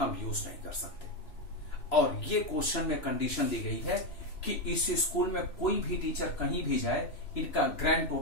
यूज नहीं कर सकते। और ये क्वेश्चन में कंडीशन दी गई है कि इस स्कूल में कोई भी टीचर कहीं भी जाए, इनका ग्रैंड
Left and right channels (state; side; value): late; right; 2.9 ms